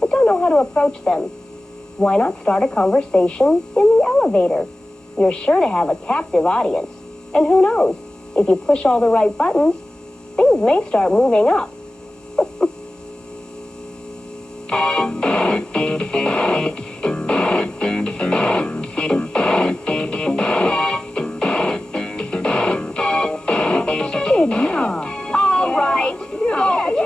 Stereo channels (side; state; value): both; normal; correlation 0.95